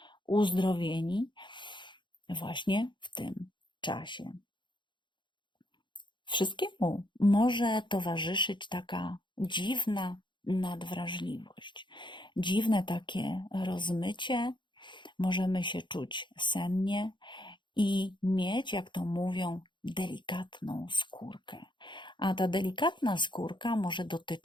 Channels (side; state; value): right; late; 0.23 ms